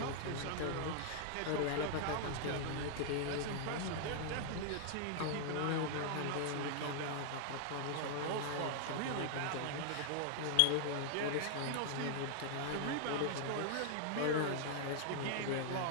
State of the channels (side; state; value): both; different; correlation -0.01